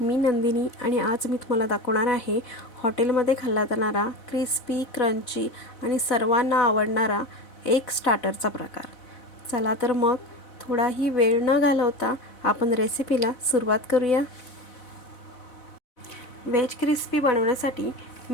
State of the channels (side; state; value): right; late; 4.0 ms